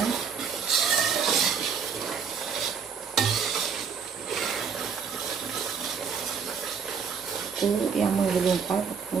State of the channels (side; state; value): left; quieter; 6.4 dB